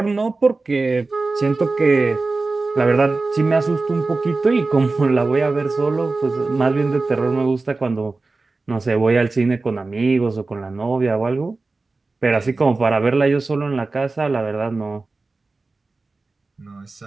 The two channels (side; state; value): left; quieter; 3.6 dB